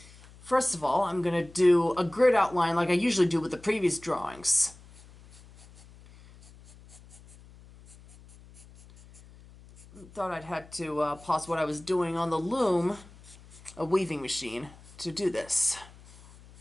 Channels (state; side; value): noise; left; hum, 22 dB below the sound